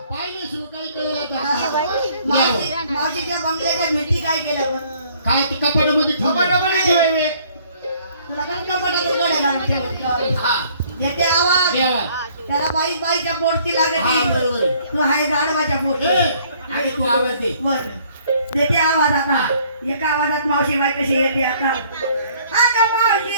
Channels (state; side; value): inverted; both; correlation -0.60